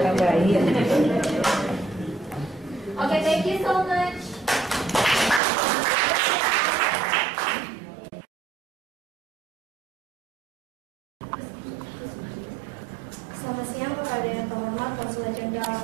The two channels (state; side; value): drops out; left; at 5.4 s